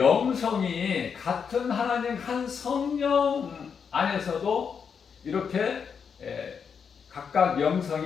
같은 하나님 한 성령 안에서도 이렇게 각각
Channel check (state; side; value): quieter; right; 6.6 dB